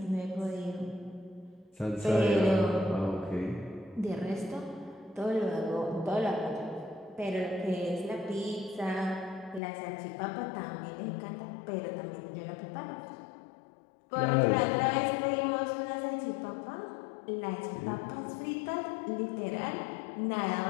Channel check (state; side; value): drops out; right; at 9.6 s